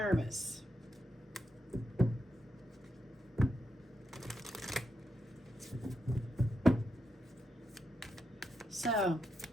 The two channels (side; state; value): both; normal; correlation 0.84